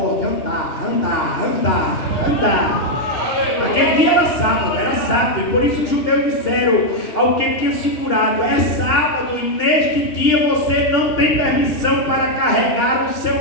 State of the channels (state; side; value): late; right; 2.9 ms